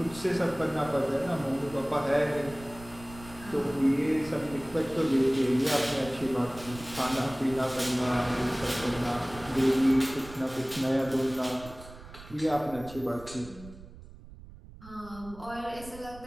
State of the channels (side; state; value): right; noise; rumble, 17 dB below the sound